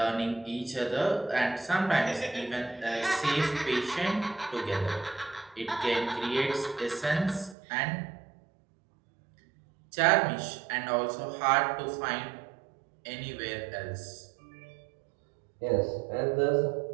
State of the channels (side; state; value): left; drops out; at 7.6 s